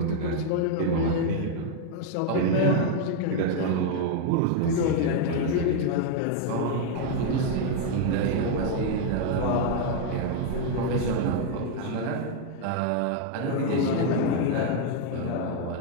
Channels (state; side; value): different; both; correlation 0.00